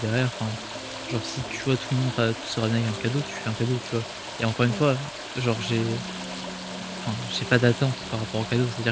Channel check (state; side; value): identical; both; correlation 1.00